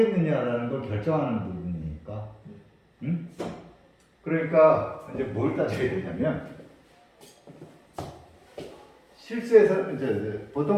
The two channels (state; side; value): identical; both; correlation 1.00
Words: 걸 결정하는 부분이니까. 응? 그러니까 이제 뭘 따져야 되냐면 실수에서 이제 보통